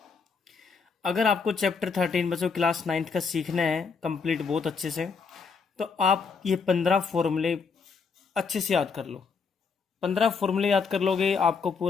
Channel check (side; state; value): right; quieter; 5.3 dB